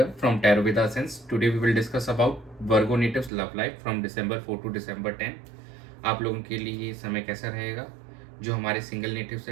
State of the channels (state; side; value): drops out; left; at 3.3 s